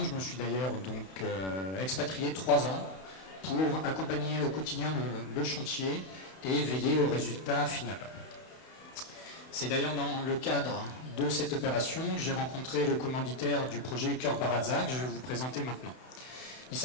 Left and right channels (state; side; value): late; right; 31 ms